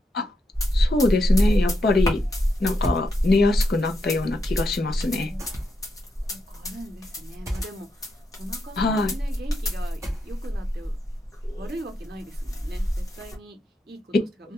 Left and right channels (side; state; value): both; normal; correlation 0.83